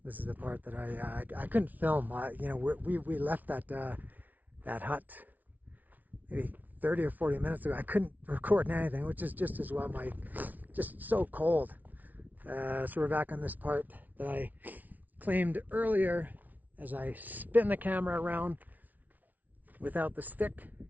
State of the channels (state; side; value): late; left; 0.077 ms